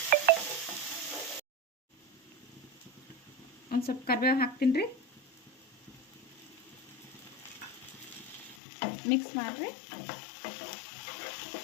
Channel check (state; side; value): drops out; right; at 8.6 s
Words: ಒಂದು ಸ್ವಲ್ಪ ಕರಿಬೇವು ಹಾಕ್ತೀನಿ ರೀ. ಮಿಕ್ಸ್ ಮಾಡಿರಿ.